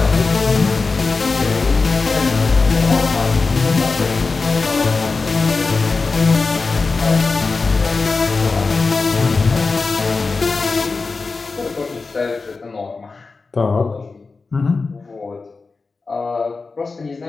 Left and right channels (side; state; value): right; quieter; 4.2 dB